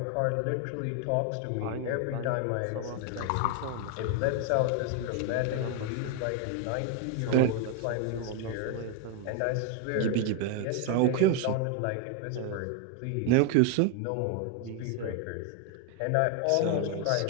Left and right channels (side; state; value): both; different; correlation 0.01